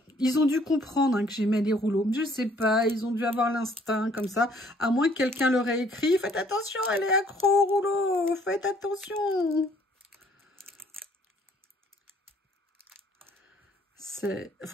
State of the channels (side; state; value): both; normal; correlation 0.61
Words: Ils ont dû comprendre, hein, que j'aimais les rouleaux. Je sais pas, ils ont dû avoir l'instinct comme ça. À moins que quelqu'un leur ait écrit, faites attention, elle est accro au rouleau, faites attention.